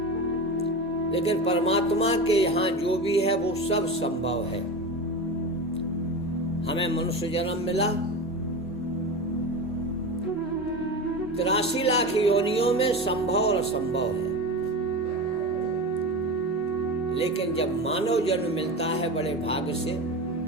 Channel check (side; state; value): both; normal; correlation 0.25